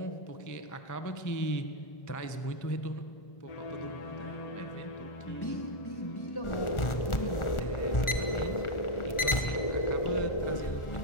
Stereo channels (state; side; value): late; right; 1.4 ms